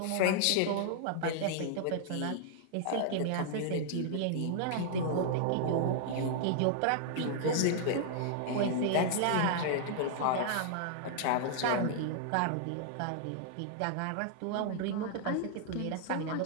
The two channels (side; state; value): both; different; correlation -0.01